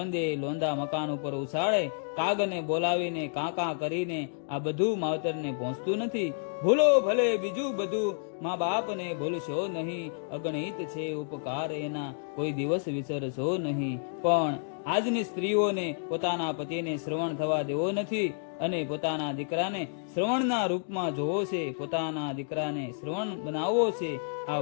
લોંદા મકાન ઉપર ઉછાળે, કાગને બોલાવીને કાંકા કરીને આ બધું માવતરને પહોંચતું નથી. ભૂલો ભલે બીજું બધું, મા બાપને ભૂલશો નહીં, અગણિત છે ઉપકાર એના, કોઈ દિવસ વિસરશો નહીં. પણ આજની સ્ત્રીઓને પોતાના પતિને શ્રવણ થવા દેવો નથી અને પોતાના દીકરાને શ્રવણના રૂપમાં જોવો છે, પોતાના દીકરાને શ્રવણ બનાવવો છે. આ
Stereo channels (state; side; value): silent; right; digital silence